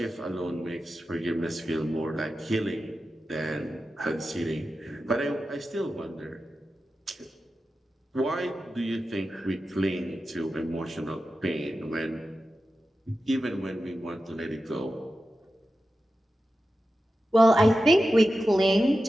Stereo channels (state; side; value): normal; both; correlation 0.92